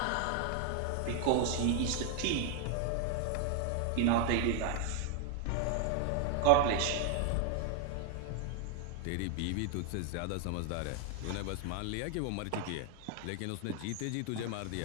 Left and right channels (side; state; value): both; different; correlation 0.00